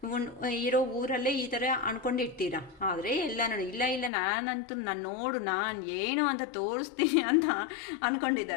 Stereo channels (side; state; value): right; drops out; at 4.1 s